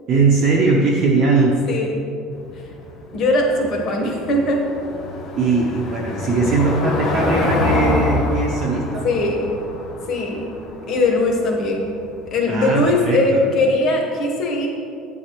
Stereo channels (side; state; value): both; normal; correlation 0.34